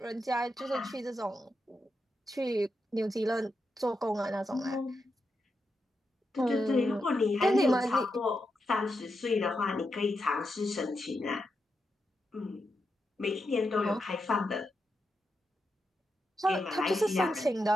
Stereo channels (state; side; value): normal; both; correlation 0.86